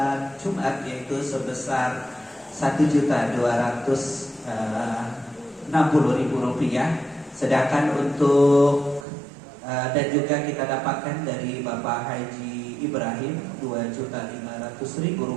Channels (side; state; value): left; drops out; at 9.1 s